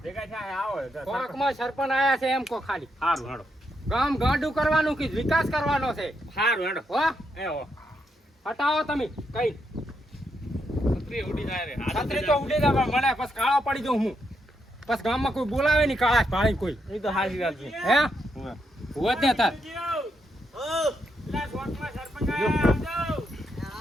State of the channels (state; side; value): normal; both; correlation 0.80